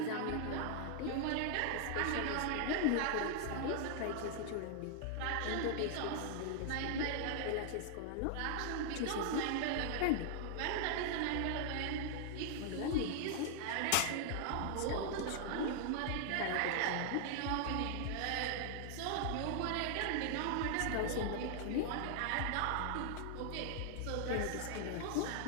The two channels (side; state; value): both; different; correlation 0.00